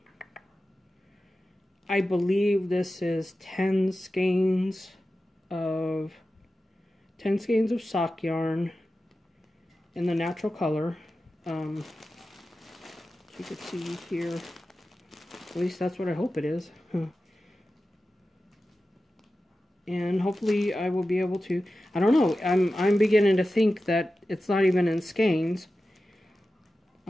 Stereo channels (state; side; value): normal; both; correlation 0.93